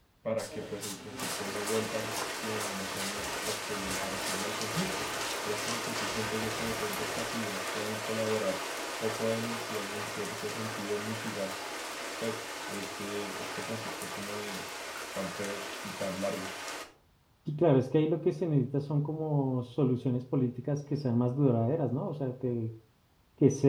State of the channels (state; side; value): identical; both; correlation 1.00